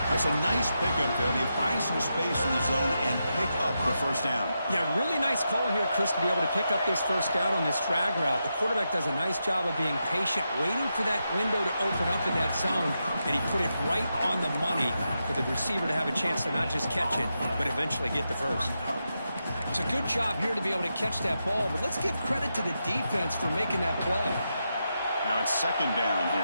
That's a nice pickup there. They find some space in the zone and pick up the first down. Yeah, really nice call here, Chris, to be able to pick up this first down on this drag route. The quarterback does a nice job of being patient, waiting for that window to open up in that zone, and he put it right on the money for the receiver to have a chance to not just catch it, but eventually get the first. It's a good job here to be able to catch that ball, but let's give credit to the defense for making that play. Now it's 2nd down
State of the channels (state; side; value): inverted; both; correlation -0.86